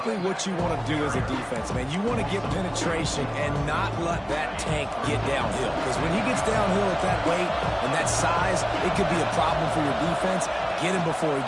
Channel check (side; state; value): both; identical; correlation 1.00